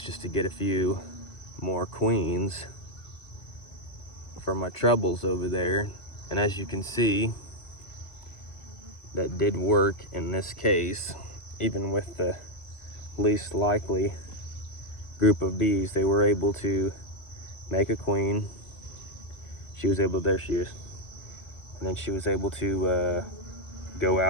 just to get a few more queens for my troubles over there. And as you can see, that did work in this case. Even with the least likely group of bees, they were able to make a queen. She was able, there she is. And then she was able to go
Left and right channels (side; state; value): right; late; 2.0 ms